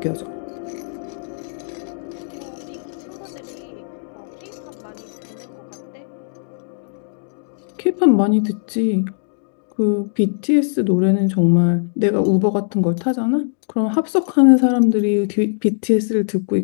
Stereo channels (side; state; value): right; silent; digital silence